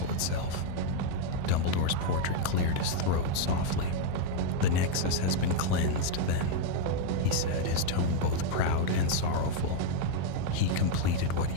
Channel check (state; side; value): different; both; correlation 0.00